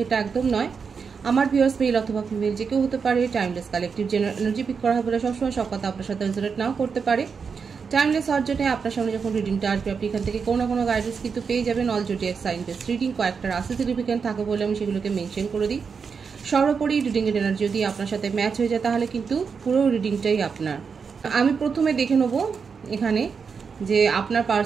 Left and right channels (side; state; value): left; quieter; 5.8 dB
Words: এটা একদম নয়। আমার ভিউয়ার্স মেল অথবা ফিমেল যে কেউ হতে পারে। Timeless collective general energy pick করা হবে বলে সবসময় সব কথা আপনার সাথে রেজোনেট নাও করতে পারে। টাইমলেস হওয়ার জন্য আপনার সামনে যখন রিডিংটা আসবে আপনি এখান থেকে কোনো না কোনো গাইডেন্স কিন্তু পেয়ে যাবেন। All zodiac sign base reading কয়েকটা রাশি সিগনিফিকেন্ট থাকে বলে আমি সেগুলোকে মেনশন করে দিই। সর্বোপরি রিডিংয়ের এনার্জি যদি আপনার সাথে ম্যাচ হয়ে যায় তাহলে কিন্তু পুরো রিডিংটাই আপনার। আমি প্রথমে দেখে নেব এখানে যে আপনার